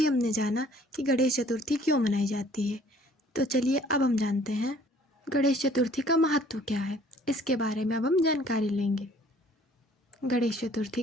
हमने जाना कि गणेश चतुर्थी क्यों मनाई जाती है। तो चलिए अब हम जानते हैं गणेश चतुर्थी का महत्व क्या है। इसके बारे में अब हम जानकारी लेंगे। गणेश चतुर्थी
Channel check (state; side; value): normal; both; correlation 0.56